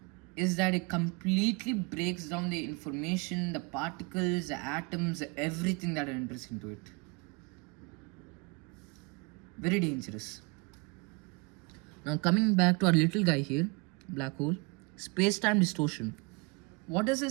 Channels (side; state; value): left; quieter; 29.5 dB